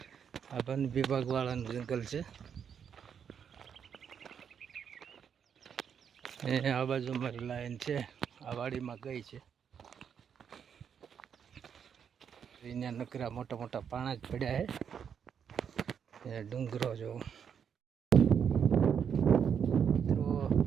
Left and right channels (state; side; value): quieter; left; 7.6 dB